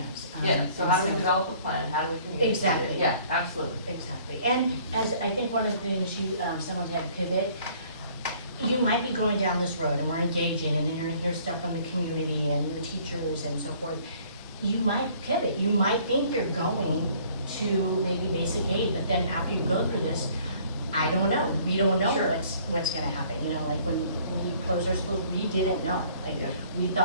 yeah, so how do we and develop a plan, how do we communicate it? Exactly. Yeah, absolutely. Exactly, and as, I think one of the things you, someone said pivot, you might be going down this road and we're engaging, and then you're gonna hear stuff from the community and the teachers and so forth. You might pivot, you might think you're going to maybe basic aid, but then after you go through this, I don't know, we don't know Sure. what's gonna happen, you know, like when we closed our schools, we didn't know. Like, Yeah. we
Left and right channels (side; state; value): both; inverted; correlation -0.57